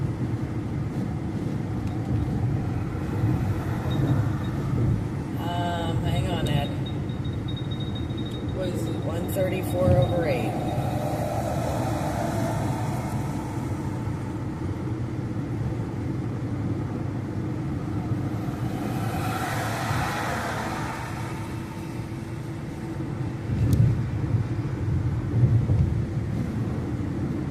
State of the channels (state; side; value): identical; both; correlation 1.00